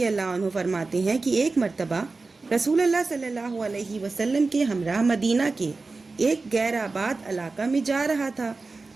अल्लाह अन्हु फरमाते हैं कि एक मर्तबा रसूलुल्लाह सल्लल्लाहु अलैहि वसल्लम के हमरा मदीना के एक गैर आबाद इलाका में जा रहा था।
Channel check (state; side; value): quieter; left; 3.8 dB